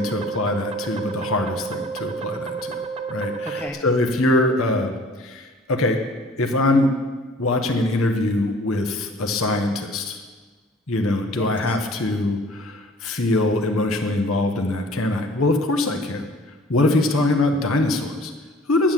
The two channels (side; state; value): both; normal; correlation 0.50